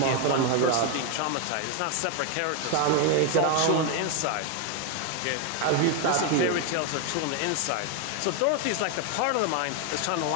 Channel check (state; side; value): different; both; correlation 0.01